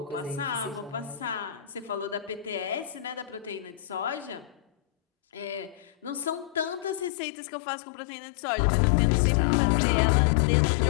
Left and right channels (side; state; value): right; drops out; at 7.1 s